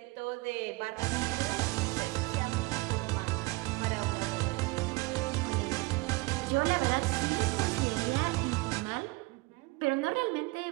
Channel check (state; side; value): quieter; left; 23.9 dB